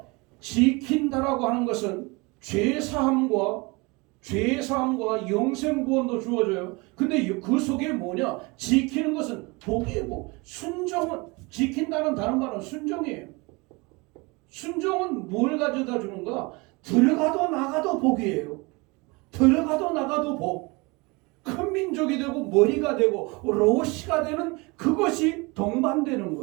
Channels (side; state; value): left; quieter; 26.5 dB